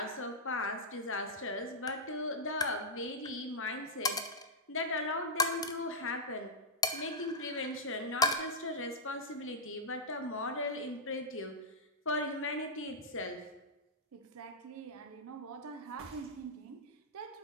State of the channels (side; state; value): both; normal; correlation -0.08